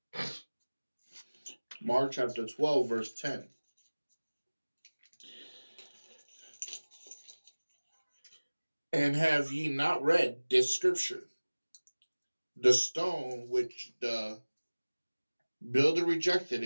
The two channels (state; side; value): inverted; both; correlation -1.00